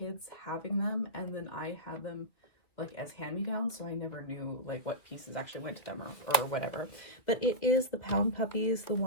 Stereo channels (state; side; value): late; right; 2.5 ms